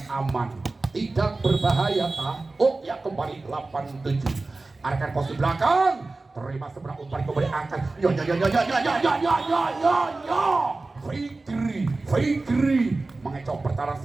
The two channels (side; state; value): left; quieter; 3.4 dB